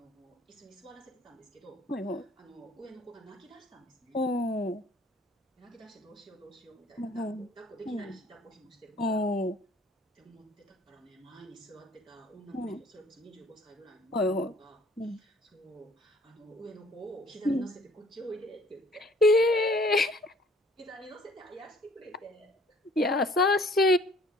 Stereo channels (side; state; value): both; normal; correlation 0.56